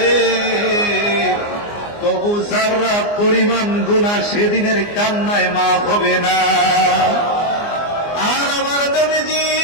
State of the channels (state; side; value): late; right; 24 ms